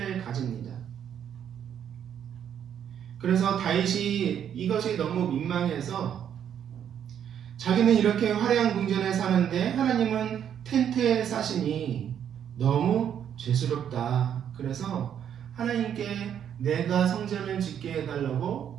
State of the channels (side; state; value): left; quieter; 9.1 dB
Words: 가집니다. 그래서 다윗이 이것이 너무 민망해서 자기는 이렇게 화려한 궁전에 사는데 하나님은 텐트에 사시니 너무 죄스럽다. 그래서 하나님께 내가 성전을 짓게 해달라고